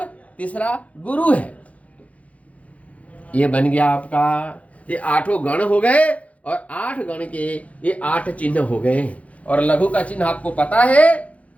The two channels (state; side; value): late; right; 0.066 ms